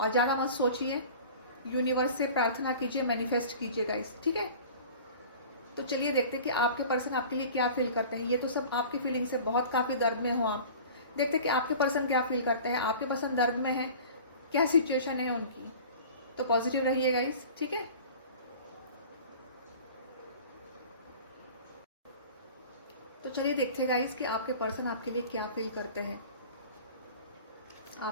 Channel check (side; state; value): both; inverted; correlation -0.41